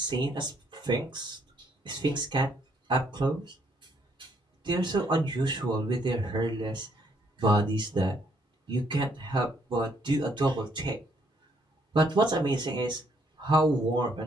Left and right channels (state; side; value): normal; both; correlation 0.70